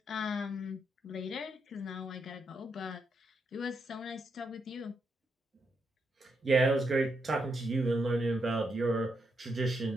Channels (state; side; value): normal; both; correlation 0.81